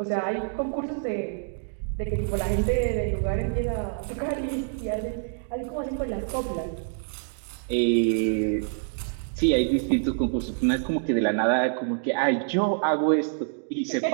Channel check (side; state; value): left; silent; digital silence